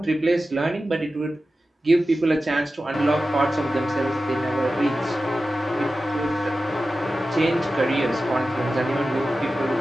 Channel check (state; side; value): normal; both; correlation 0.94